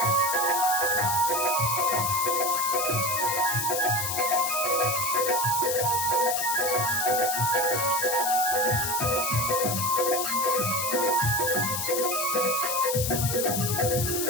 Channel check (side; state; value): left; noise; hiss, 1 dB below the sound